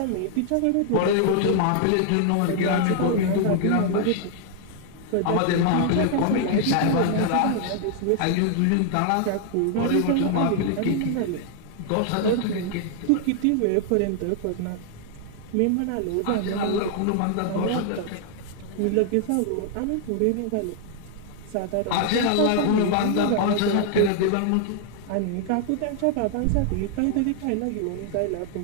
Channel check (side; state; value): both; different; correlation 0.00